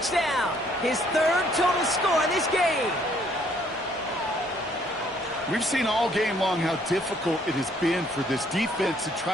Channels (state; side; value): normal; both; correlation 0.64